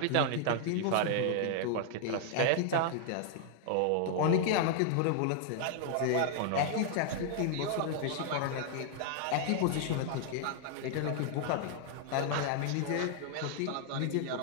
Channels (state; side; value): different; both; correlation 0.00